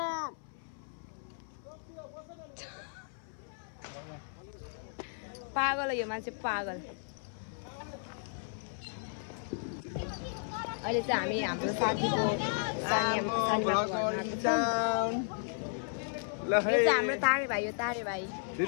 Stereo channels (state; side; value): silent; right; 55 dB below the other